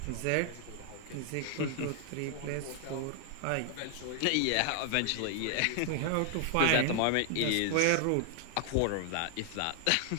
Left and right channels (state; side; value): different; both; correlation 0.00